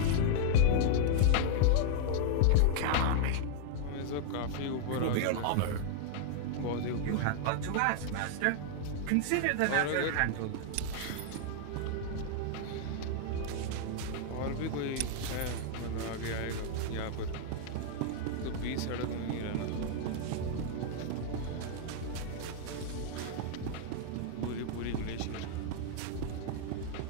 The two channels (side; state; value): both; different; correlation -0.01